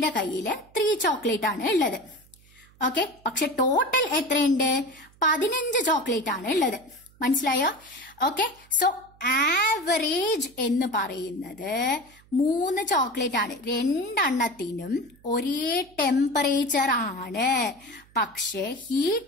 കയ്യില് 3 ചോക്ലേറ്റ് ആണ് ഉള്ളത്. ഓക്കെ, പക്ഷെ ടോട്ടൽ എത്രയുണ്ട്? 15 ചോക്ലേറ്റ് ആണ് ഉള്ളത്. മനസ്സിലായോ? ഓക്കെ, സോ ആവറേജ് എന്ന് പറയുന്നത് 3 ചോക്ലേറ്റ് ആണ്. 2 എണ്ണത്തിനും ഒരേ ടെമ്പറേച്ചർ ആണ്. പക്ഷെ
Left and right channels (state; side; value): noise; right; hum, 28 dB below the sound